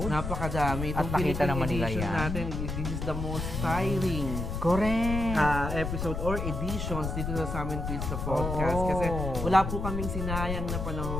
Napakadami. At Itong nakita Philippine naman nila edition yan. natin, this is the most tiring Correct! episode or editions dito sa Amin Quiz the Podcast. Oo. Kasi wala po kaming sinayang na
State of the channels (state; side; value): noise; left; rumble, 3 dB below the sound